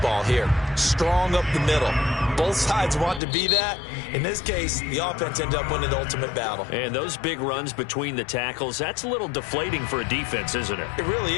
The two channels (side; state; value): right; drops out; at 3.2 s